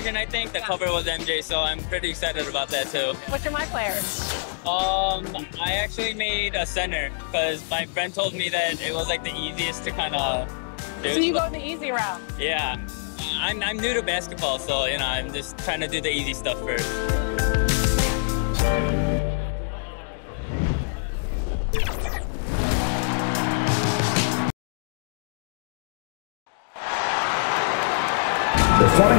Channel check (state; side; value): silent; right; digital silence